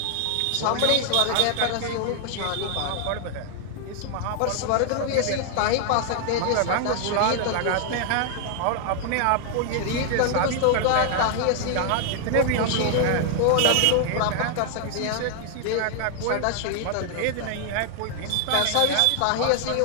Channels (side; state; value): both; different; correlation 0.00